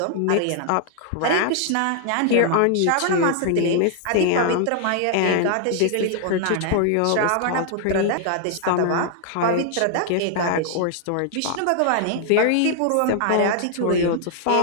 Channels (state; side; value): different; both; correlation 0.00